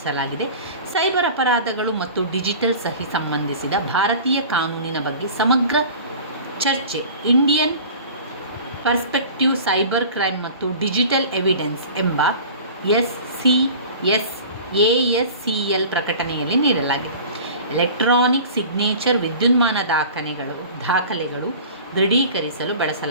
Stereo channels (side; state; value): both; inverted; correlation -0.41